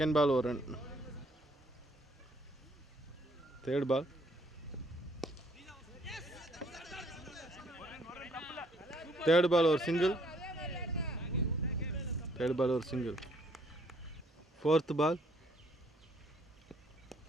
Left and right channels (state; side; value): normal; both; correlation 0.65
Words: பால் ஒரு run. Third ball. Third ball ஒரு சிங்கிள். தேர்ட் பால் ஒரு single. Fourth ball.